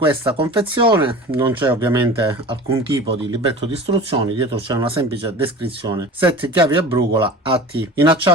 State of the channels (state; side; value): normal; both; correlation 0.36